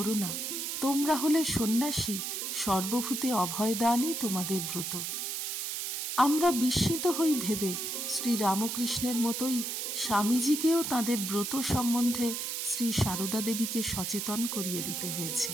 না, তোমরা হলে সন্ন্যাসী, সর্বভূতে অভয়দানই তোমাদের ব্রত। আমরা বিস্মিত হই ভেবে শ্রী রামকৃষ্ণের মতোই স্বামীজিকেও তাঁদের ব্রত সম্বন্ধে শ্রী সারদা দেবীকে সচেতন করিয়ে দিতে হয়েছে।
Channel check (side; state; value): right; noise; hiss, 3 dB below the sound